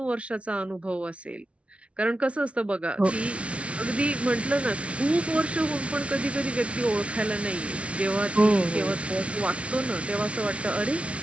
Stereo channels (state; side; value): late; left; 0.062 ms